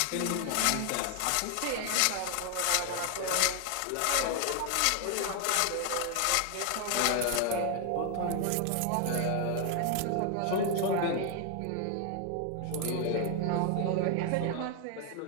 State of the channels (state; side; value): different; both; correlation 0.00